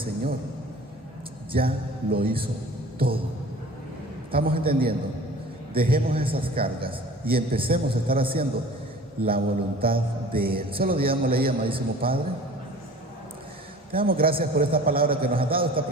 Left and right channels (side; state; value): both; normal; correlation 0.44